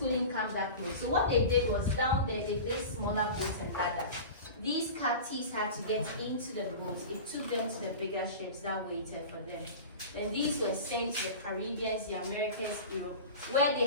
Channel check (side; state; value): both; inverted; correlation -0.33